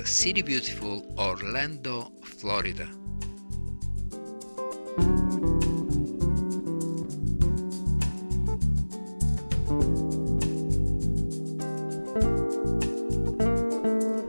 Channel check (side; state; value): both; inverted; correlation -1.00